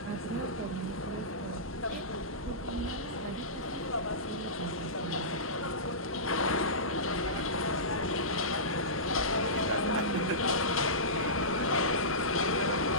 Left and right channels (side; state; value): both; normal; correlation -0.19